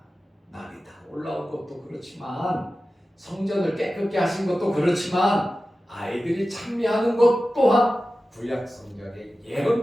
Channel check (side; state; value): both; normal; correlation 0.95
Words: 날이 다 올라온 것도 그렇지만 성전을 깨끗게 하신 것도 그렇지만 아이들이 찬미하는 것 또한 구약 성경에